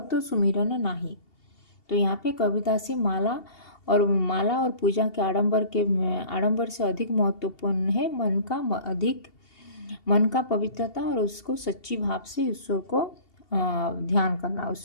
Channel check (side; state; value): right; late; 2.7 ms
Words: तो सुमिरन नाही। तो यहाँ पे कबीरदास जी माला और माला और पूजा के आडंबर से अधिक महत्वपूर्ण है मन का पवित्रता और उसको सच्ची भाव से ईश्वर को ध्यान करना,